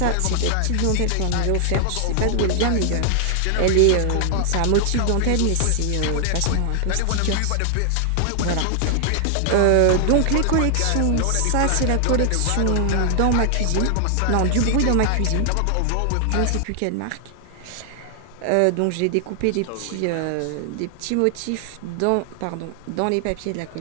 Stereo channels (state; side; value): different; both; correlation 0.00